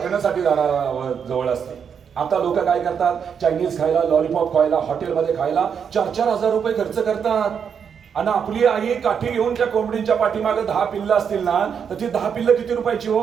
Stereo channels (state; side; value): quieter; left; 7.2 dB